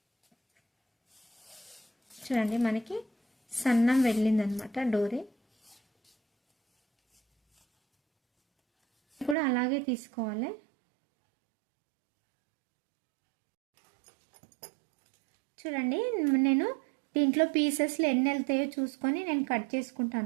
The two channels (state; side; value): drops out; left; at 9.3 s